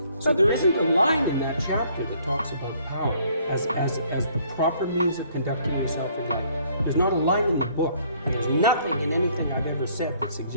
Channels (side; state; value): both; inverted; correlation -0.62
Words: So there isn't a line in that chapter that talks about power as the proper means of conducting yourself in life. There's not a line in the book, and there's nothing in anything I've ever said that